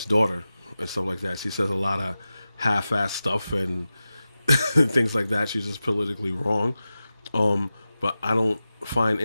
daughter and stuff like that. She says a lot of half-ass stuff and things like that. She's just politically wrong. But I don't find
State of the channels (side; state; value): both; inverted; correlation -0.94